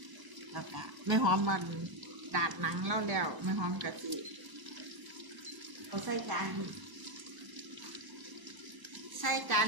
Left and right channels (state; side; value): late; left; 1.0 ms